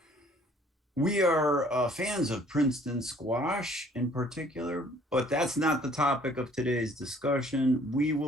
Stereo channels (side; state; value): both; normal; correlation 0.57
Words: We are fans of Princeton squash in particular, but that's not the topic of today's discussion. We